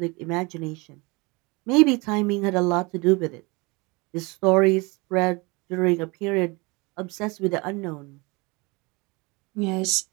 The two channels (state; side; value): quieter; left; 26.6 dB